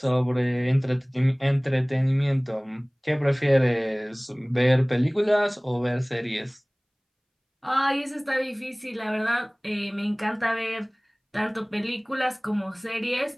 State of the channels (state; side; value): identical; both; correlation 1.00